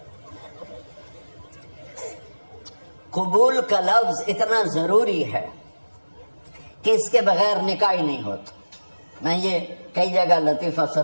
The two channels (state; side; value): inverted; both; correlation -1.00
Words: قبول کا لفظ اتنا ضروری ہے کہ اس کے بغیر نکاح ہی نہیں ہوتا. میں یہ کئی جگہ لطیفہ